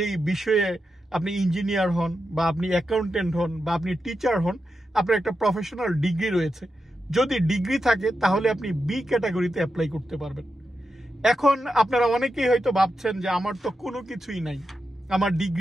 বিষয়ে আপনি ইঞ্জিনিয়ার হন, বা আপনি অ্যাকাউন্টেন্ট হন, বা আপনি টিচার হন, আপনার একটা প্রফেশনাল ডিগ্রি রয়েছে। যদি ডিগ্রি থাকে তাহলে আপনি বি ক্যাটাগরিতে অ্যাপ্লাই করতে পারবেন। এখন আপনারা অনেকেই হয়তো ভাবছেন যে আমার তো কোনো কিছুই নাই, আমার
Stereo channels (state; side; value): normal; both; correlation 0.88